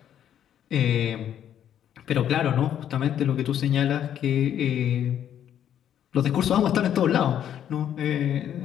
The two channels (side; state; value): right; quieter; 10.0 dB